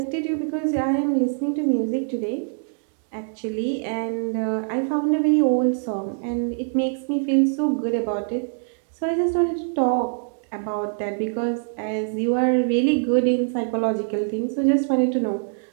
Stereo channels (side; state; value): left; silent; digital silence